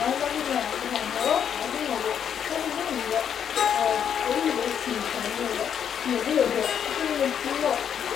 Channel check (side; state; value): right; quieter; 8.4 dB